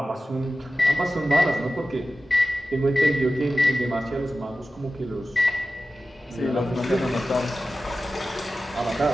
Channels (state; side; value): normal; both; correlation 0.94